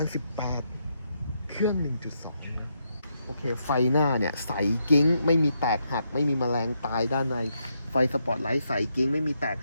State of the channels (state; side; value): inverted; both; correlation -0.80